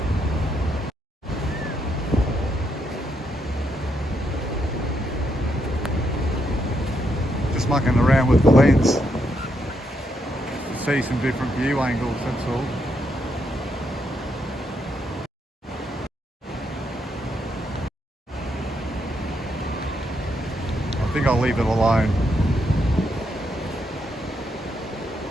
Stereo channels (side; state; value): both; normal; correlation 0.78